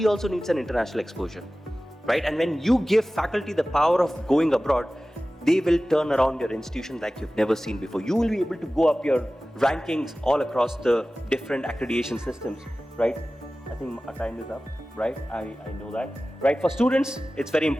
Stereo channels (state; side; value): normal; both; correlation 0.96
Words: also needs an international exposure, right? And when you give faculty the power of going abroad, they will turn around your institution like you've never seen before. You will be able to go up your rankings all across the different accreditation systems, right? I think our time is up, right? I know that, right? For students, it's very